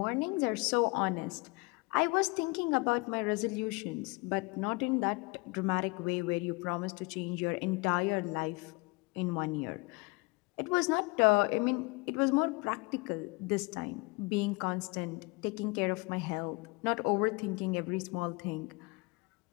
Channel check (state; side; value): quieter; right; 27.0 dB